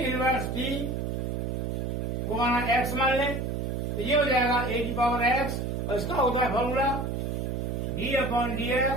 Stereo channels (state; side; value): noise; right; hum, 2 dB below the sound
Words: टी को माना x मान लें, तो ये हो जाएगा ए की पावर x और इसका होता है फॉर्मूला